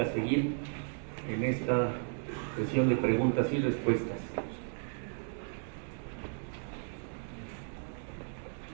a seguir en esta sesión de preguntas y respuestas.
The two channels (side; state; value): left; silent; 55 dB below the other